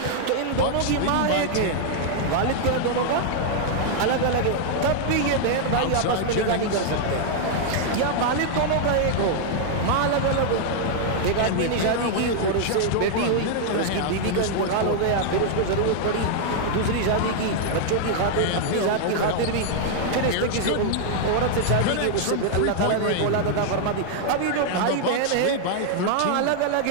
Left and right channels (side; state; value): both; different; correlation 0.00